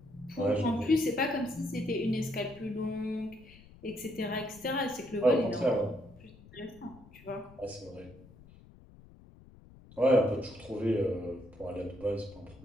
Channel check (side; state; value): left; noise; rumble, 22 dB below the sound